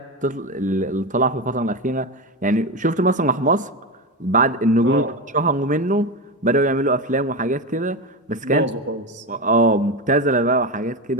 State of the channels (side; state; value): both; normal; correlation 0.17